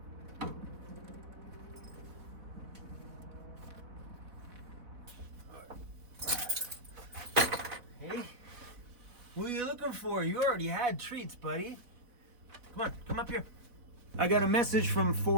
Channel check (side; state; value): left; late; 4.1 ms